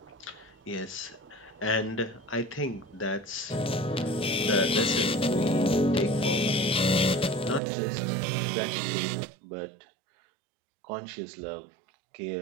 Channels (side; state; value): left; drops out; at 7.6 s